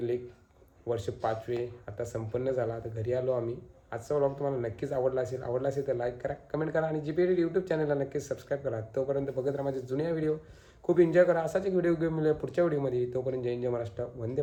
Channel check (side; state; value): both; identical; correlation 1.00